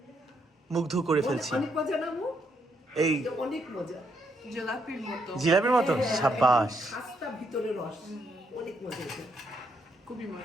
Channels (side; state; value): both; normal; correlation 0.76